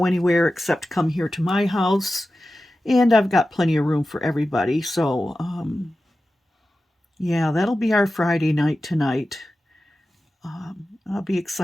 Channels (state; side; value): normal; both; correlation 0.94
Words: anywhere except come here to my house. And I've got plenty of room for everybody. So, yeah, that'll be our Friday night tonight. I'll be